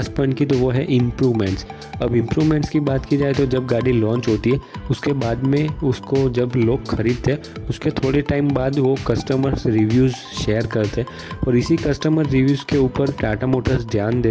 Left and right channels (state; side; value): identical; both; correlation 1.00